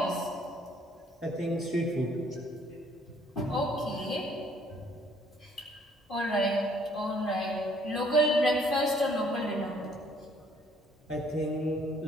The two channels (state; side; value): normal; both; correlation 0.62